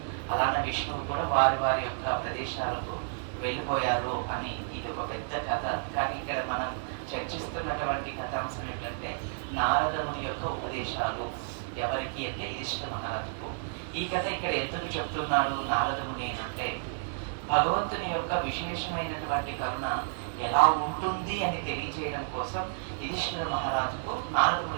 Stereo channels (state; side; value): silent; left; digital silence